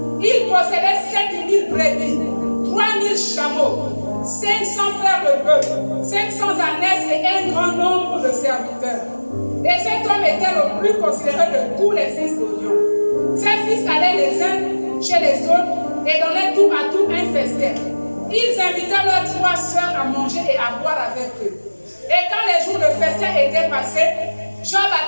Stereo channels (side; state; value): both; inverted; correlation -1.00